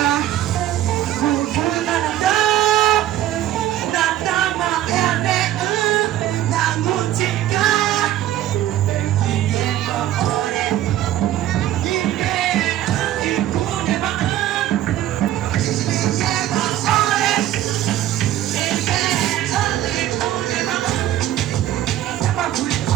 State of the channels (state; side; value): quieter; left; 12.8 dB